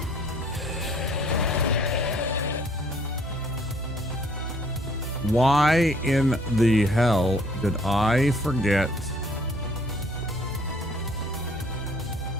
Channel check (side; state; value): both; normal; correlation 0.60